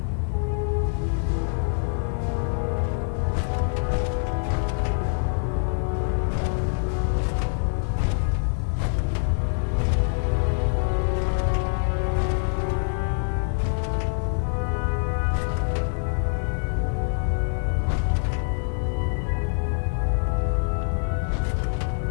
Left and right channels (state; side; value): silent; right; 62 dB below the other